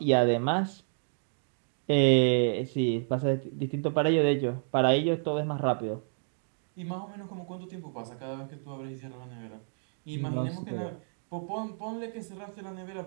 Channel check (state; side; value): silent; left; digital silence